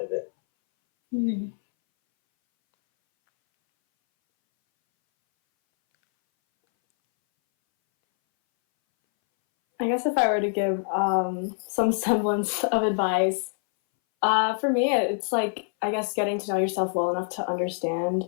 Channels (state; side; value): silent; right; 62 dB below the other